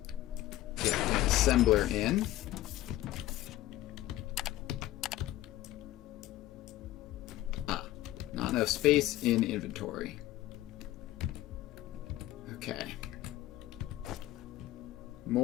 get an assembler in. Not enough space in inventory. Okay.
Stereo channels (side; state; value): right; quieter; 15.2 dB